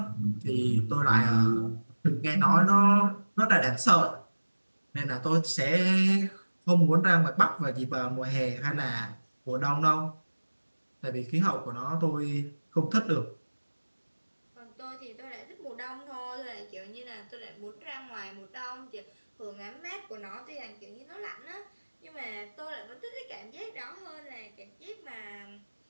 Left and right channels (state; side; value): inverted; both; correlation -1.00